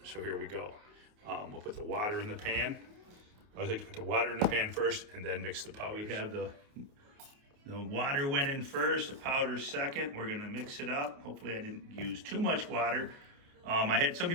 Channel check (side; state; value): left; late; 28 ms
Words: so here we go. We'll put the water in the pan. I always like to put the water in the pan first and then mix the powder. We have the water went in first, the powder second. We're gonna mix it up. Hopefully I didn't use too much water. I had some